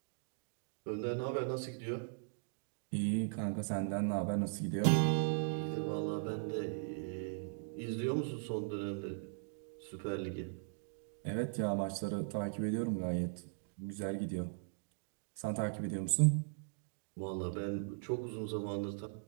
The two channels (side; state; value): left; silent; digital silence